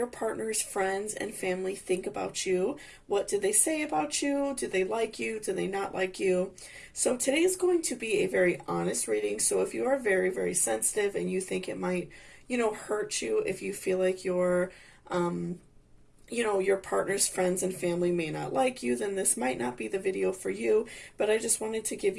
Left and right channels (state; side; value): identical; both; correlation 1.00